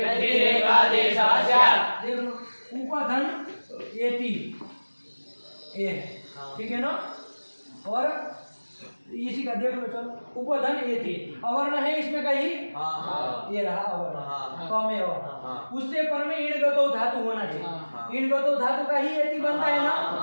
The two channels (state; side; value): inverted; both; correlation -1.00